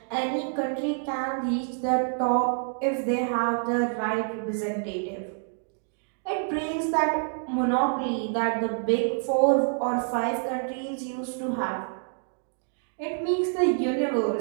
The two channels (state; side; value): silent; left; 59 dB below the other